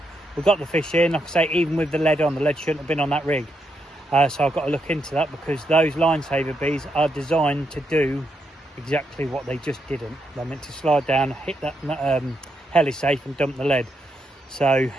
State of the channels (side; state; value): both; normal; correlation 0.81